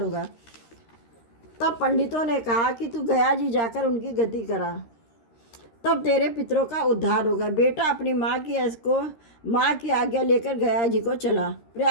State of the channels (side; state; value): right; late; 13 ms